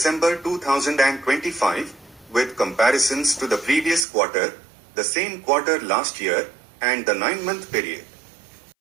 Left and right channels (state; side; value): drops out; left; at 4.0 s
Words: 2025, with comparisons to the previous quarter, the same quarter last year, and the 9-month period.